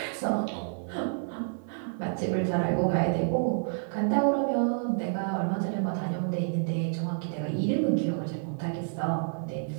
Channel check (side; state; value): left; silent; 59 dB below the other